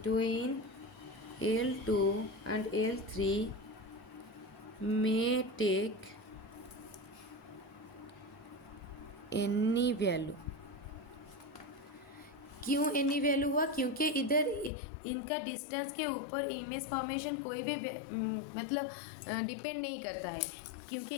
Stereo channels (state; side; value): drops out; right; at 14.7 s